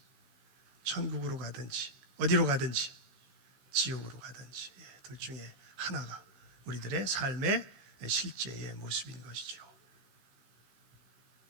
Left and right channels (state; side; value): late; left; 16 ms